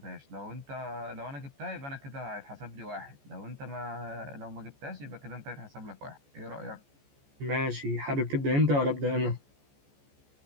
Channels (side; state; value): left; late; 14 ms